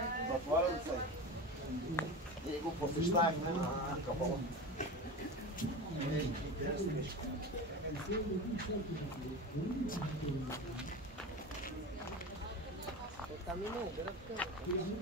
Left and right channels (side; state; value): both; normal; correlation 0.27